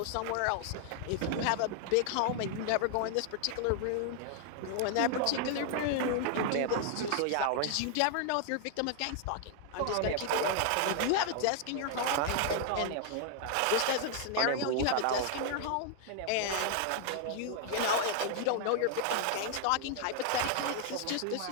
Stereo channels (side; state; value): both; different; correlation 0.00